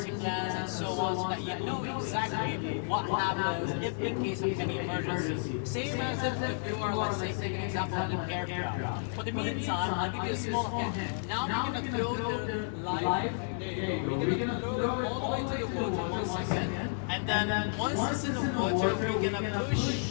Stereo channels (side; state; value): right; silent; 57 dB below the other